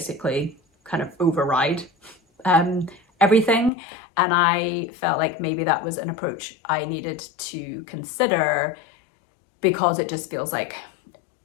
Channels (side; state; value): right; drops out; at 3.7 s